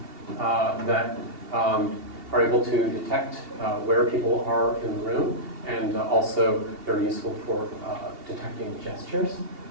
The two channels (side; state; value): left; late; 2.8 ms